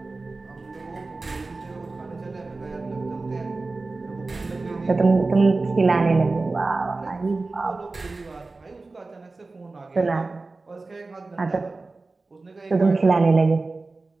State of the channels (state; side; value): quieter; left; 3.5 dB